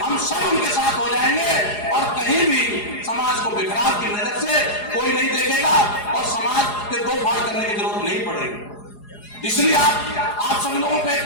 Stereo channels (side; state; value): right; late; 4.8 ms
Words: हम सब उनके साथ हो जाएंगे और कहीं भी समाज को बिखराव की नजर से कोई नहीं देखेगा और समाज के दो फाड़ करने की जरूरत नहीं पड़ेगी। इसलिए आप सभी लोगों को एक